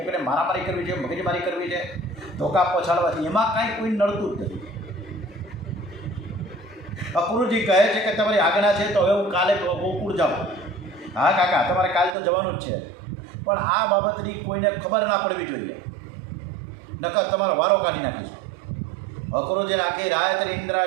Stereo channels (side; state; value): left; drops out; at 12.2 s